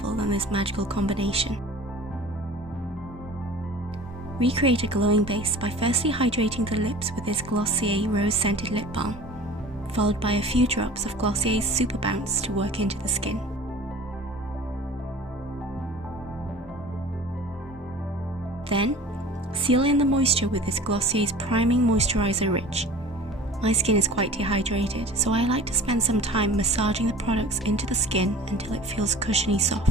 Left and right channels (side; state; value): both; normal; correlation 0.42